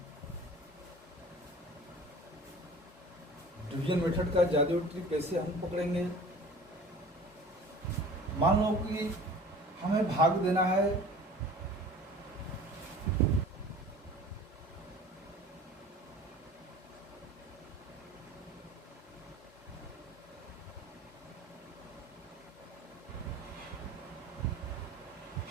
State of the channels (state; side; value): normal; both; correlation 0.43